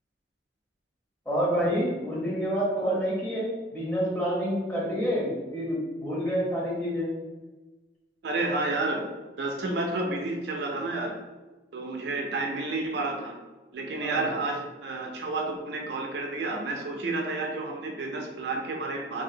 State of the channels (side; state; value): both; normal; correlation 0.39